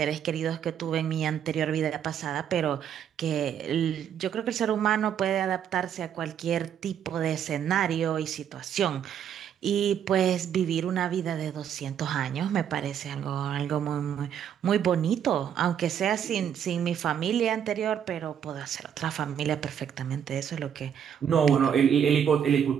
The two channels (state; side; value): quieter; left; 8.9 dB